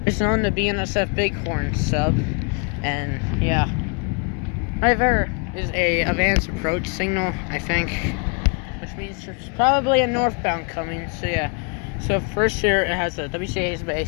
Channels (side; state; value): right; quieter; 35.8 dB